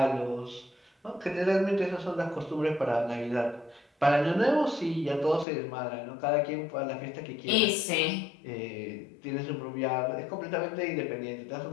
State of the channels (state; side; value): drops out; right; at 5.5 s